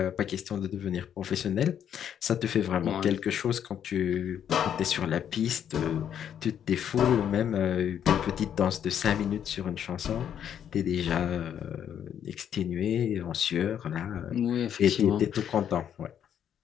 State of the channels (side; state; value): right; quieter; 9.3 dB